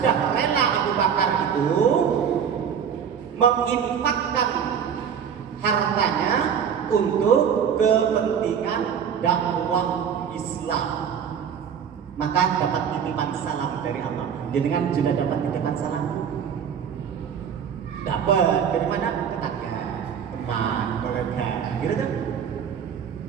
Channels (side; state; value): left; quieter; 7.8 dB